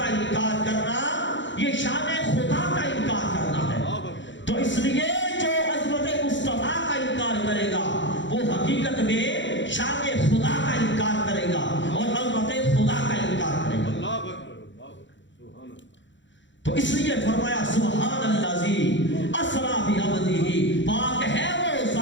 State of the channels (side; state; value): right; late; 0.54 ms